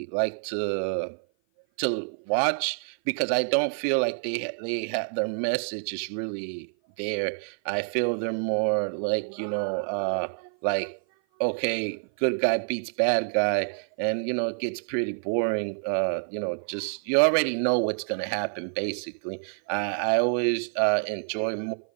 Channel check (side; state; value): left; silent; 55 dB below the other